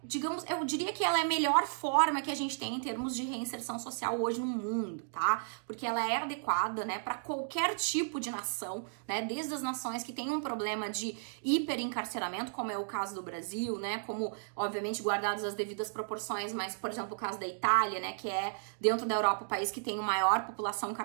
digamos, eu diria que ela é a melhor forma que a gente tem em termos de reinserção social hoje no mundo, tá? Porque ela é adequada, né, para qualquer tipo de nação, né, desde as nações que têm um problema de hiperencarceramento, como é o caso do Brasil, né, como, obviamente, guardadas as devidas proporções, mas, por exemplo, o caso da Itália, né, que é, dentro da Europa, o país que tem a maior população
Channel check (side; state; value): left; silent; digital silence